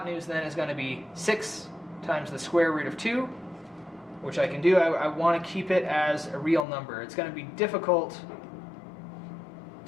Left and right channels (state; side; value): drops out; right; at 6.7 s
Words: then is going to be 6 times the square root of 2, which I can do. I want to keep it as a real number. It's going to be difficult